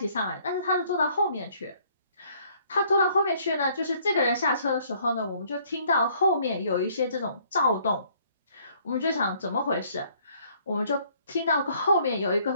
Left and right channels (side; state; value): both; inverted; correlation -0.62